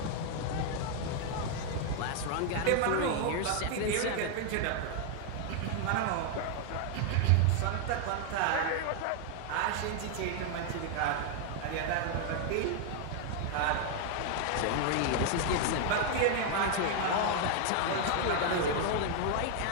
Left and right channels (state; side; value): different; both; correlation 0.00